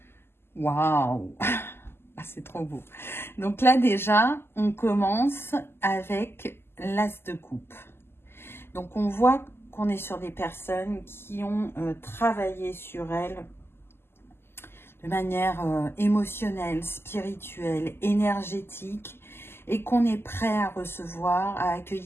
Waouh! Ah, c'est trop beau. Donc là, déjà, on commence avec l'As de coupe. Donc, on voit qu'on est sur des personnes qui ont travaillé sur elles de manière émotionnelle, spirituelle, énergétique, et qu'on est prêt à recevoir, à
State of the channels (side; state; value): right; late; 0.12 ms